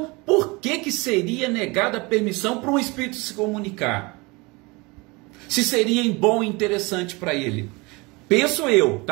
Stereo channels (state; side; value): quieter; left; 25.7 dB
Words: por que seria negada a permissão para um espírito se comunicar? Se seria bom e interessante para ele? Penso eu,